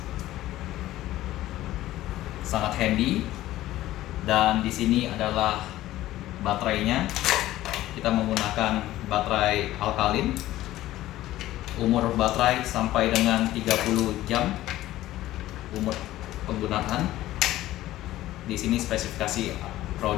Sangat handy, dan di sini adalah baterainya. Kita menggunakan baterai alkalin. Umur baterai sampai dengan 30 jam umur penggunaan. Di sini spesifikasi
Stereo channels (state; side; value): quieter; right; 15.2 dB